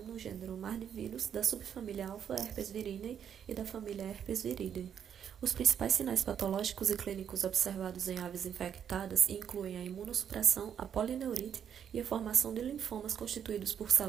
no gênero Mardivírus da subfamília Alpha herpes viridae e da família Herpes viridae. Os principais sinais patológicos e clínicos observados em aves infectadas incluem a imunossupressão, a polineurite e a formação de linfomas constituídos por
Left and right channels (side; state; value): left; quieter; 8.5 dB